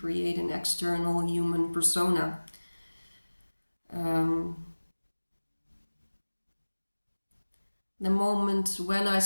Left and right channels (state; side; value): inverted; both; correlation -1.00